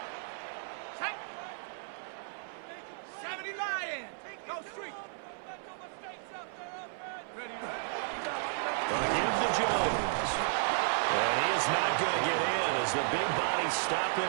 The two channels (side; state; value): left; silent; 55 dB below the other